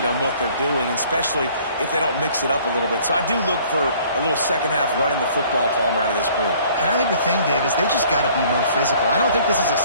on what they're doing, especially if they don't mix it up a little bit. So I do look for a little second half running the football, Palmer, out of this group. And I think the thing, Dave, is they just got to be more physical. I don't think this is a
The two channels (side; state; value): both; inverted; correlation -0.56